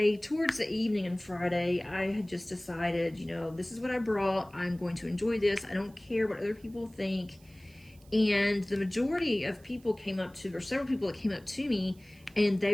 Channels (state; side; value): noise; right; hiss, 28 dB below the sound